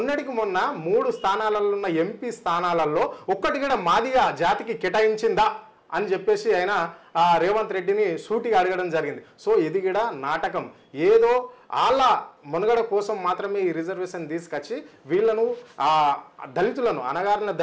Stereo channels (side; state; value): both; identical; correlation 1.00